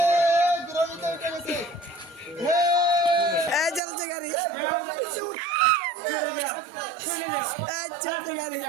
এই চলছে গাড়ি, এই চলছে গাড়ি।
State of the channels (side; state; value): left; drops out; at 3.8 s